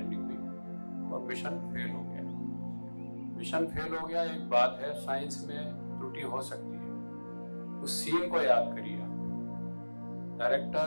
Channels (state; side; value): inverted; both; correlation -1.00